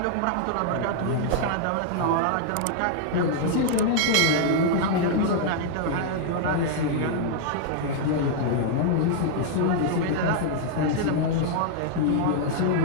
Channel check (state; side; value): different; both; correlation -0.01